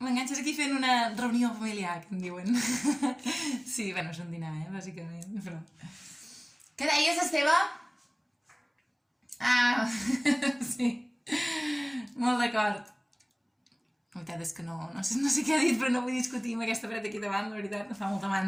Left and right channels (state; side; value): identical; both; correlation 1.00